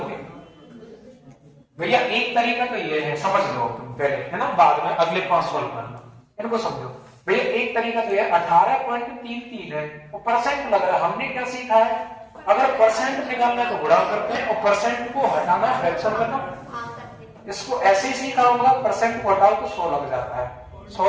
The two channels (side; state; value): both; identical; correlation 1.00